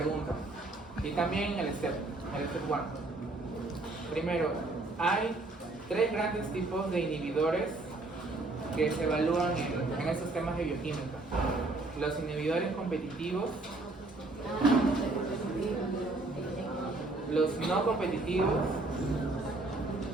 Y también el step 1. Primero, hay 3 grandes tipos de inhibidores que se evalúan en estos temas de bioquímica. Los inhibidores competitivos, los no competitivos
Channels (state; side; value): quieter; left; 3.1 dB